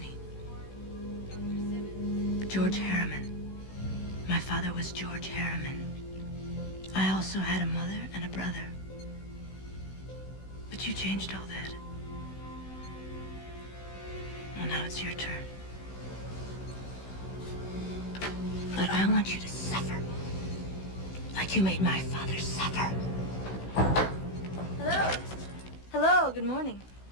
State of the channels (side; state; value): right; late; 16 ms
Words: he? George Harriman. My father was George Harriman. I also had a mother and a brother. But you changed all that. Well, now it's your turn. But I want you to suffer. Like you made my father suffer. Hello. Hello, good morning.